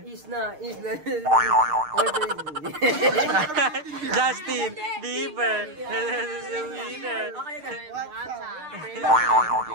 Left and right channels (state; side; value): late; left; 6.6 ms